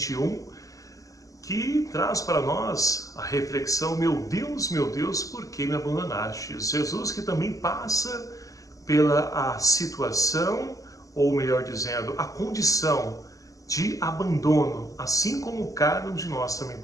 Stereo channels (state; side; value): late; right; 0.16 ms